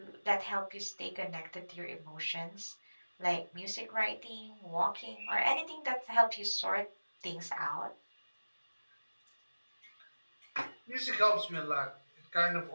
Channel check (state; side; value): inverted; both; correlation -1.00